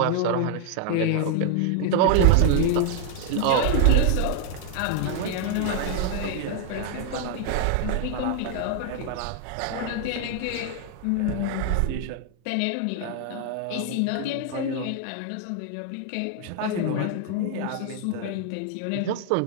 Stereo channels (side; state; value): both; different; correlation 0.00